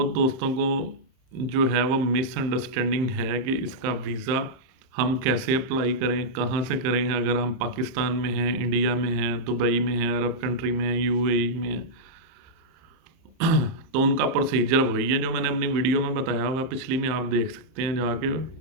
दोस्तों को जो है वो मिसअंडरस्टैंडिंग है कि इसका वीज़ा हम कैसे अप्लाई करें, कहाँ से करें। अगर हम पाकिस्तान में हैं, इंडिया में हैं, दुबई में हैं, अरब कंट्री में हैं, यूएई में हैं, तो उनका प्रोसीजर वही है जो मैंने अपनी वीडियो में बताया हुआ पिछली में। आप देख सकते हैं जाके,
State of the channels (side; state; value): left; late; 30 ms